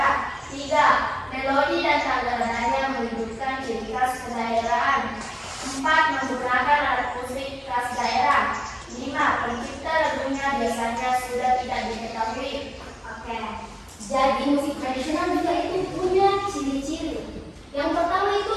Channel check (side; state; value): both; identical; correlation 1.00